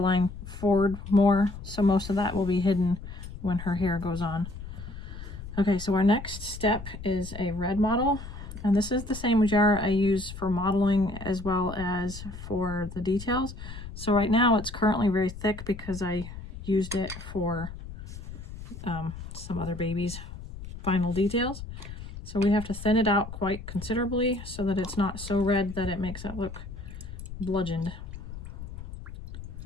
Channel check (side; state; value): left; noise; rumble, 11 dB below the sound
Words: forward more, so most of that will be hidden when her hair goes on. Okay, so our next step is a red mottle, and this is the same jar I use for mottling as well as for the details. So right now it's currently very thick because I used it for some other babies' final details. So we have to thin it out quite considerably so that it's not so red that it makes it look bludgeoned.